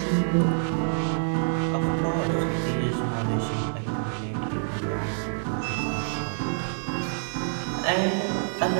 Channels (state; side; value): silent; left; digital silence